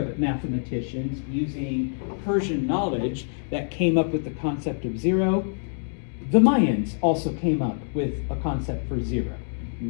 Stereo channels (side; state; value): right; silent; digital silence